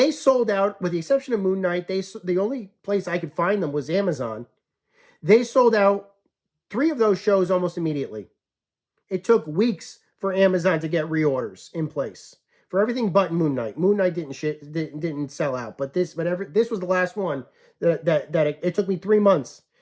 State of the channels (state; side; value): identical; both; correlation 1.00